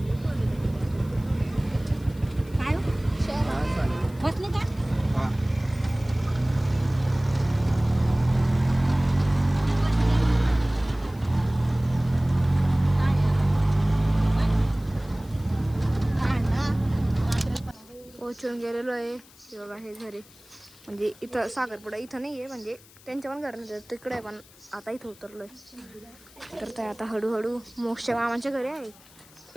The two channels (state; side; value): noise; left; hiss, 25 dB below the sound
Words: काय बसले का. पोचून गेलेलो आहे. हे बघा हे घरी, म्हणजे इथं साखरपुडा इथं नाही आहे, म्हणजे त्यांच्या पण घर नाही तिकडे आहे. पण आता इथं उतरलोय. तर ते आता हळूहळू मोक्षच्या मामाच्या घरी आहे.